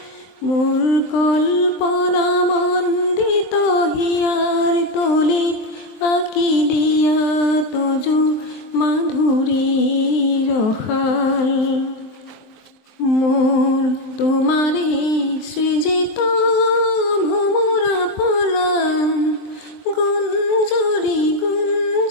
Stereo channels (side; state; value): right; late; 23 ms